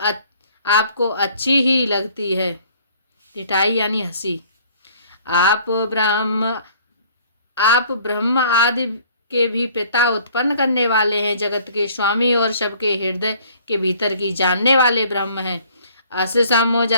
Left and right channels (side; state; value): both; inverted; correlation -0.56